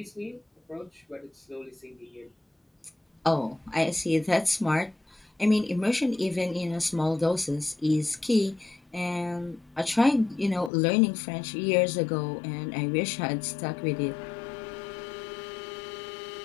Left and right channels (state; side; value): drops out; right; at 10.7 s